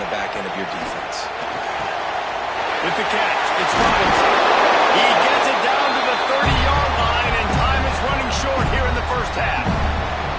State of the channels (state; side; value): identical; both; correlation 1.00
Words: the back end of your defense. With the catch, it's Robinson. He gets it down to the 30-yard line, and time is running short here in the first half.